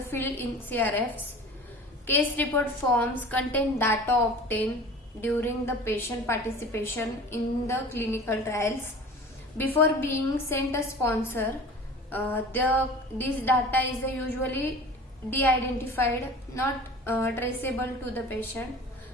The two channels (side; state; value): both; normal; correlation 0.40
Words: in CRFs. Case report forms contain data obtained during the patient participation in the clinical trials. Before being sent a sponsor, this data is usually de-identified, not traceable to the patient,